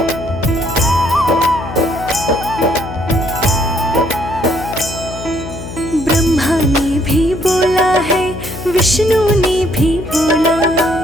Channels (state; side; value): noise; left; hum, 10 dB below the sound